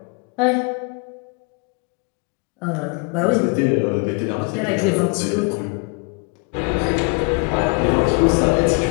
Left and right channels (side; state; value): right; quieter; 34.2 dB